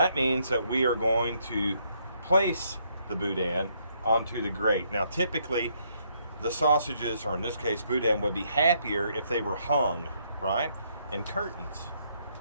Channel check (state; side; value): inverted; both; correlation -0.72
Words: means that we are going to place the boudin onto the grate. Now typically, the sausages, or in this case boudin, would be happier if they were hung, right? In curtains,